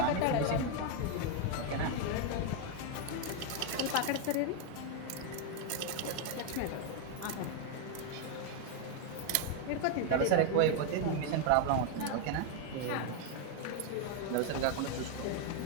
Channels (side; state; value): both; different; correlation 0.01